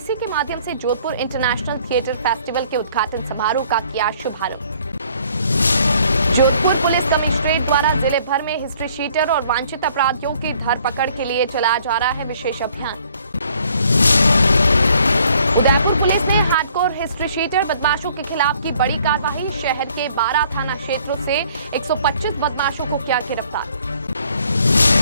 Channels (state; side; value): inverted; both; correlation -0.61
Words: के माध्यम से जोधपुर इंटरनेशनल थिएटर फेस्टिवल के उद्घाटन समारोह का किया शुभारंभ। जोधपुर पुलिस कमिश्नरेट द्वारा जिले भर में हिस्ट्री शीटर और वांछित अपराधियों की धरपकड़ के लिए चलाया जा रहा है विशेष अभियान। उदयपुर पुलिस ने हार्डकोर हिस्ट्री शीटर बदमाशों के खिलाफ की बड़ी कार्रवाई। शहर के 12 थाना क्षेत्रों से 125 बदमाशों को किया गिरफ्तार।